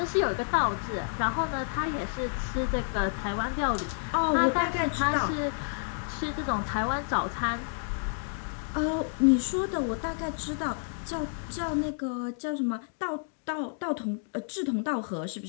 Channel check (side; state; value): right; silent; digital silence